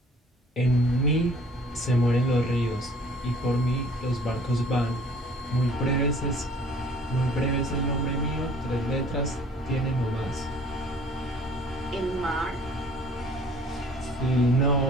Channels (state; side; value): normal; both; correlation 0.53